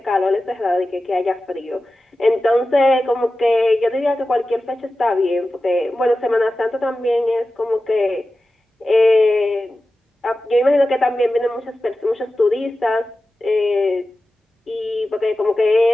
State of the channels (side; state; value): both; normal; correlation 0.94